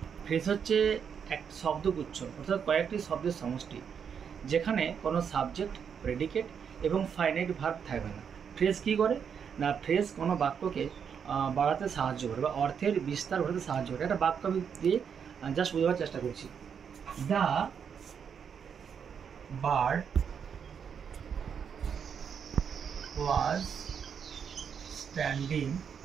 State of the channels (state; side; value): quieter; left; 7.2 dB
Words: ফ্রেজ হচ্ছে এক শব্দগুচ্ছ, অর্থাৎ কয়েকটি শব্দের সমষ্টি যেখানে কোনো সাবজেক্ট, প্রেডিকেট এবং ফাইনাইট ভার্ব থাকবে না। ফ্রেজ কী করে না, ফ্রেজ কোনো বাক্যকে বাড়াতে সাহায্য করে বা অর্থের বিস্তার ঘটাতে সাহায্য করে। একটা বাক্য আমি দিয়ে জাস্ট বোঝাবার চেষ্টা করছি। The bird was standing